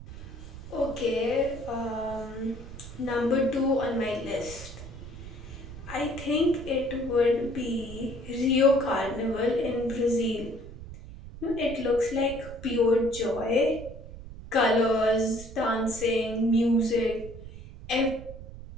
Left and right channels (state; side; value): noise; right; rumble, 14 dB below the sound